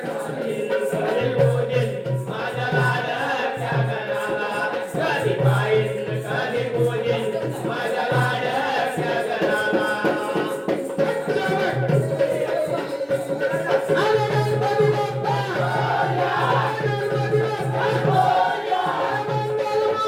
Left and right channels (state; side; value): identical; both; correlation 1.00